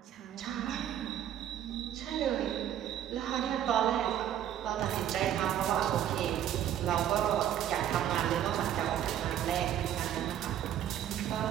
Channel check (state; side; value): quieter; left; 10.8 dB